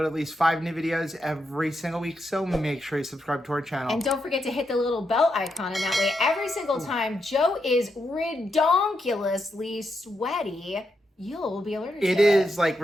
at least 5 new videos every single week, so make sure you subscribe to our channel. And don't forget to hit the little bell icon, and that way every single time Joe is redonkulously sweaty, you'll be alerted to it. It is like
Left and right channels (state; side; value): normal; both; correlation 0.83